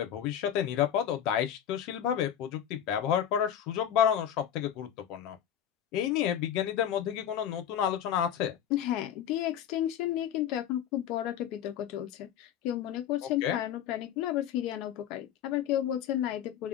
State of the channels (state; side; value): quieter; right; 10.0 dB